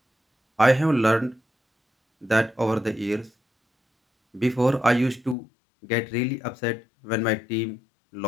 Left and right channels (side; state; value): right; drops out; at 5.4 s